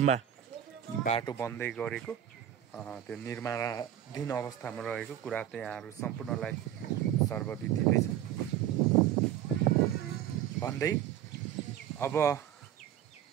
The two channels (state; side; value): quieter; left; 10.9 dB